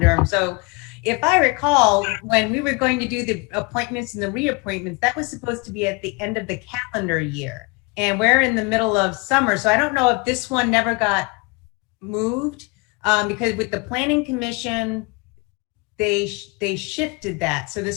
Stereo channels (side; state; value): right; quieter; 28.5 dB